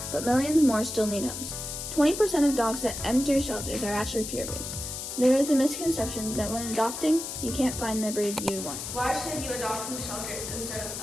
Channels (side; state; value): left; noise; hiss, 7 dB below the sound